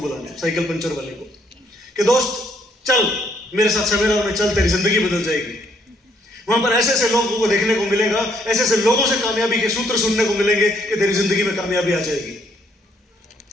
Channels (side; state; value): both; normal; correlation 0.69